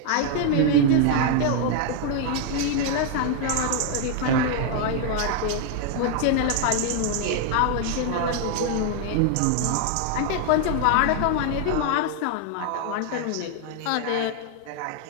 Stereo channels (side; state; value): both; different; correlation 0.00